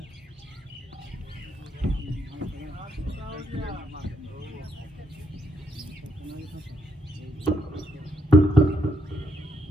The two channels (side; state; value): both; normal; correlation 0.75